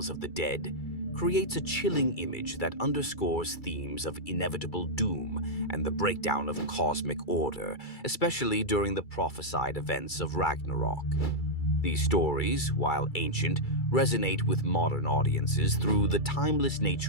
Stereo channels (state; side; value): late; right; 2.3 ms